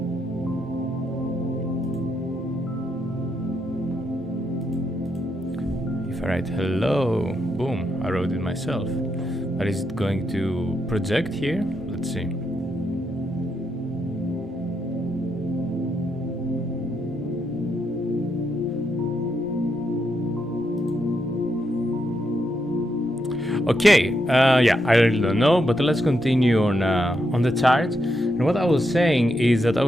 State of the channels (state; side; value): normal; both; correlation 0.81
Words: If I write hello, boom, I wrote it myself. But is it going to project here? Let's see. Okay, yeah, I really don't know, but let's continue on the chart. And what I was saying is that I